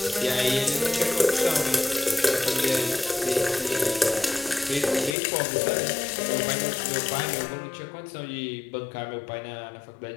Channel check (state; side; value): drops out; right; at 5.2 s